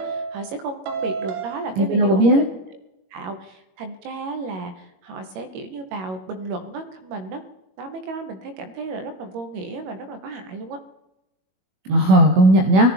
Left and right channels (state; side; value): late; left; 22 ms